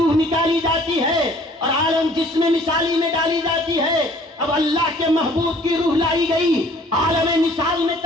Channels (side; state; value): both; normal; correlation 0.55